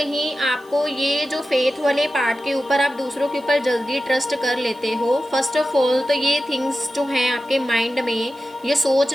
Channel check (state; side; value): noise; right; hiss, 29 dB below the sound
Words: आपको ये जो फेथ वाले पार्ट के ऊपर आप दूसरों के ऊपर जल्दी ट्रस्ट कर लेते हो। फर्स्ट ऑफ ऑल तो ये थिंग्स जो हैं आपके माइंड में, ये सोच